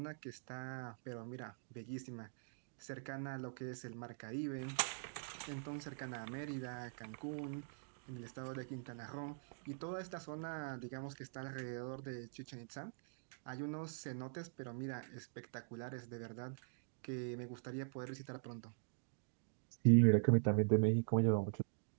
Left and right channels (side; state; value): left; silent; digital silence